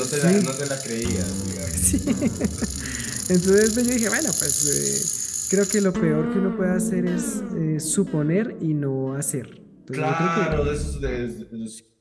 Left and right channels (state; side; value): identical; both; correlation 1.00